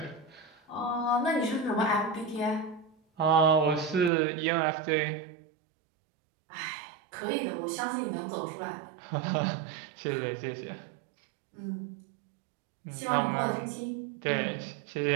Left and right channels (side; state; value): left; drops out; at 4.1 s